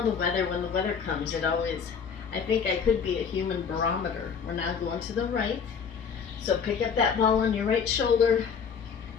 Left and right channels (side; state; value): right; quieter; 6.5 dB